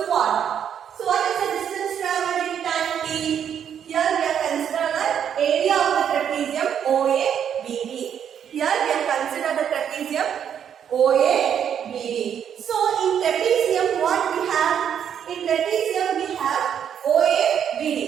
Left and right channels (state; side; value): quieter; left; 8.6 dB